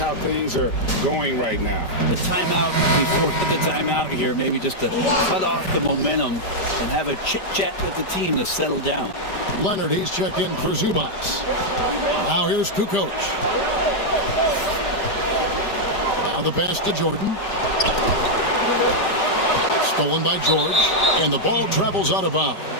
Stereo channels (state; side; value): late; right; 5.1 ms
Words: things are going right now. The timeout before the timeout here, maybe just to cut off the momentum and have a chit-chat with the team to settle down. Leonard, he's checked in for Zubats. Now here's Kukoc. Now the pass to Jordan. Stolen by George, and the ball travels out of bounds.